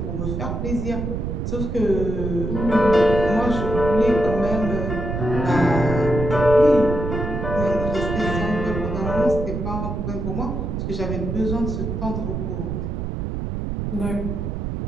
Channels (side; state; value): right; noise; rumble, 3 dB below the sound